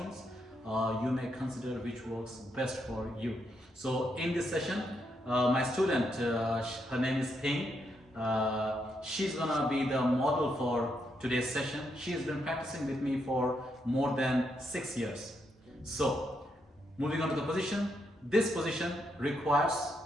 You may consider which works best for you. So in this session, my student, her name is Ping. She's gonna be the model for today's session. She has been practicing with me for more than 6 years. So, moving on to the position. This position requires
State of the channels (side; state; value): both; normal; correlation 0.79